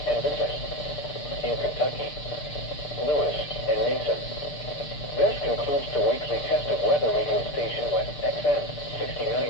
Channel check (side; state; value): right; late; 6.7 ms